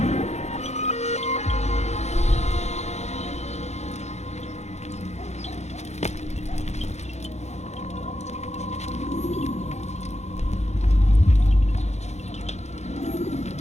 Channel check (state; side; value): late; right; 0.32 ms